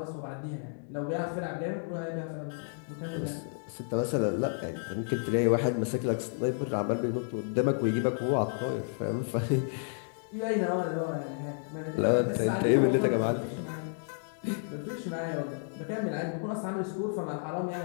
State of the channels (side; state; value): right; silent; 57 dB below the other